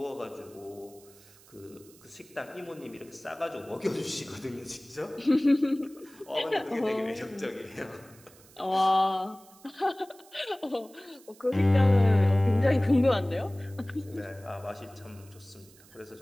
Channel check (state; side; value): noise; right; hiss, 25 dB below the sound